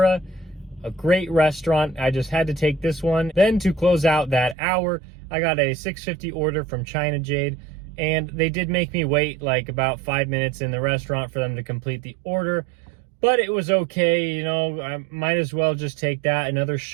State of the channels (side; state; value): left; drops out; at 4.5 s